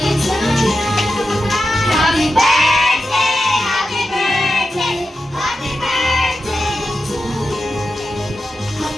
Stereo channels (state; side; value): normal; both; correlation 0.90